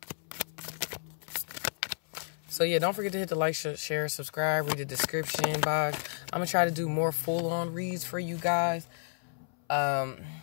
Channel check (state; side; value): silent; right; 57 dB below the other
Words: So yeah, don't forget to hit the like, share, subscribe, read the description box. I'm gonna try to do more full-on reads for you guys. And